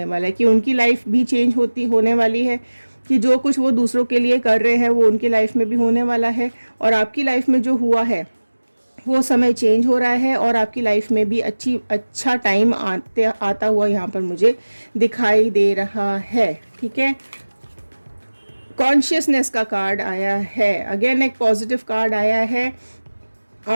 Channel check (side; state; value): both; inverted; correlation -1.00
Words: वाला है कि उनकी लाइफ भी चेंज होने वाली है, कि जो कुछ वो दूसरों के लिए कर रहे हैं वो उनकी लाइफ में भी होने वाला है। और आपकी लाइफ में जो हुआ है वो समय चेंज हो रहा है, और आपकी लाइफ में भी अच्छा टाइम आता हुआ यहाँ पर मुझे दिखाई दे रहा है, ठीक है। कॉन्शियसनेस का कार्ड आया है, अगेन एक पॉजिटिव कार्ड आया है।